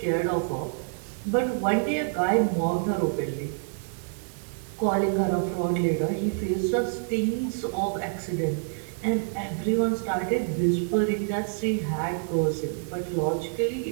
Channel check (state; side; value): silent; left; 56 dB below the other